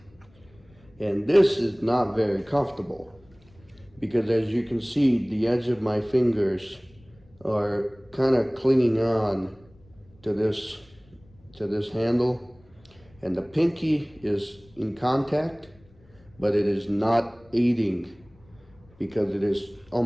And this is not very comfortable because as you can see, the edge of my fingers are kind of clinging on to this handle, and the pinky is in contact, but it is not aiding because it is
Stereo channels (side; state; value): left; noise; rumble, 28 dB below the sound